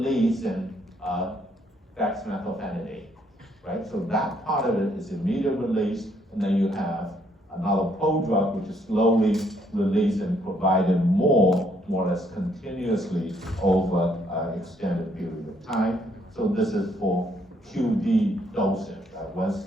in dexmethylphenidate, right? So that part of it is immediate release, and then you have another prodrug which is slowly released and provided more or less continuously over an extended period of time. So this is for QD dosing, once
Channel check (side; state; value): both; normal; correlation 0.70